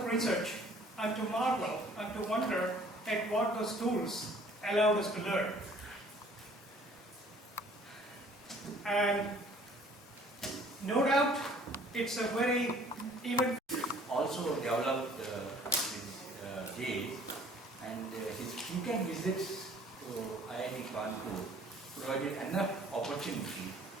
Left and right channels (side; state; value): both; normal; correlation 0.54